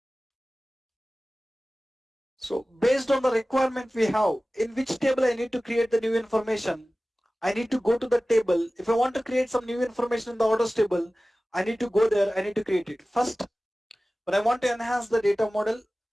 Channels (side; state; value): both; normal; correlation 0.97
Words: So based on the requirement we have, in which table I need to create the new information, I need to go to the table. If I want to create some new information in the orders table, I need to go there, I need to create it. First, when I want to enhance the data model,